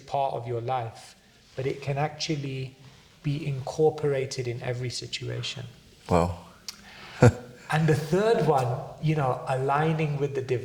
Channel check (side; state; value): both; identical; correlation 1.00